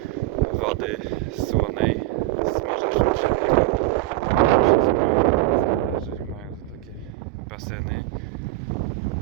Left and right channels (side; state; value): left; quieter; 17.4 dB